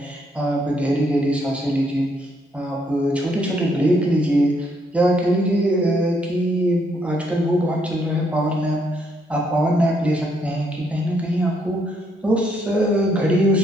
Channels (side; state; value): both; normal; correlation 0.73